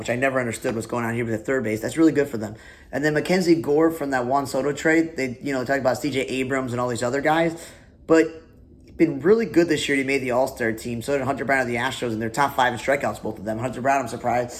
I never understood what's going on here with the third base. That's really good for them. And then Mackenzie Gore from that Juan Soto trade, they talk about C.J. Abrams and all these other guys, but been really good this year. He made the All-Star team. So did Hunter Brown of the Astros, and they're top 5 in strikeouts, both of them. Hunter Brown, I'm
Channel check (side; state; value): both; identical; correlation 1.00